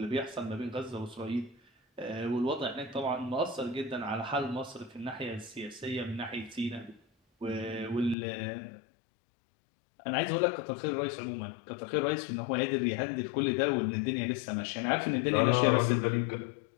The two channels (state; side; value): drops out; right; at 8.2 s